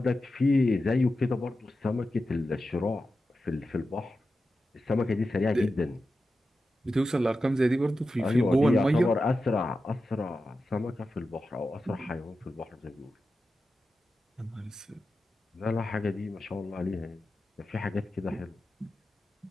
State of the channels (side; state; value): both; normal; correlation 0.92